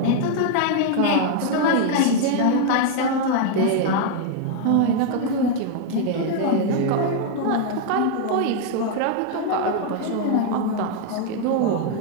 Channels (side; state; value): both; different; correlation 0.00